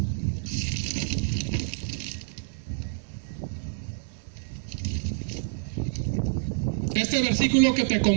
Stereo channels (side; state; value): left; silent; digital silence